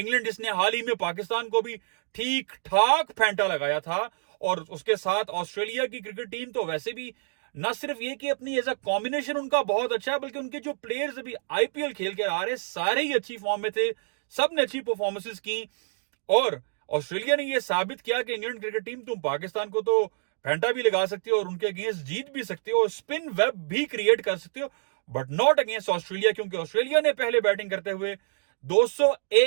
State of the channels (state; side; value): silent; left; digital silence